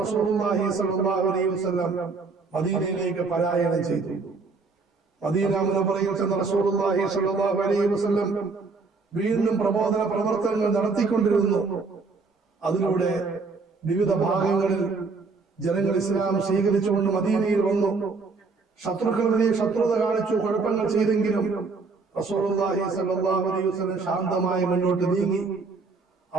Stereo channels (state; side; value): quieter; left; 4.3 dB